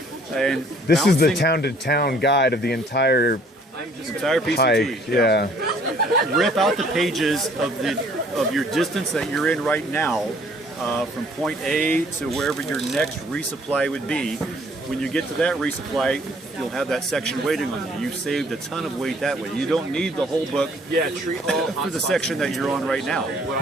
And this is the town-to-town guide of the entire PCT. hike. Yeah. Rip out the pages of your distance that you're in right now, from point A to wherever your next resupply would be. When you get to that resupply, you'll have that section waiting on you. You've saved a ton of weight that way. You don't need the whole book for the section that you're on right now.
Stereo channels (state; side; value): normal; both; correlation 0.59